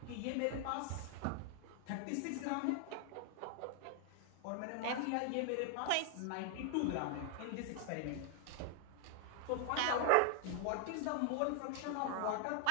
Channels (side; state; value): both; different; correlation 0.00